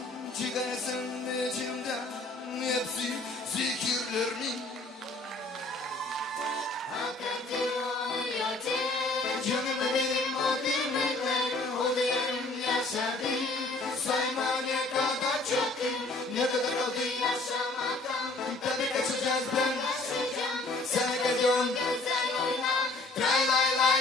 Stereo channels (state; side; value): quieter; right; 3.0 dB